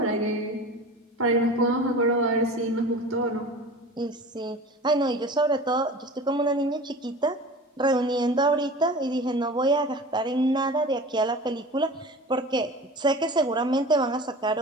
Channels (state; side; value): normal; both; correlation 0.37